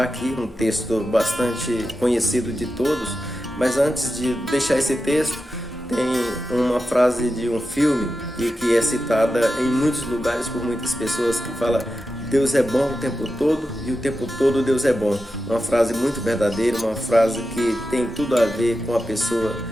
aqui, um texto bastante conhecido de todos, mas antes de deixar esse texto, tem uma frase de um filme e que é citada em muitos lugares por muitas pessoas que fala: Deus é bom o tempo todo e o tempo todo Deus é bom. Uma frase muito verdadeira, uma frase que tem tudo a ver com a pessoa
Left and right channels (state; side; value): normal; both; correlation 0.90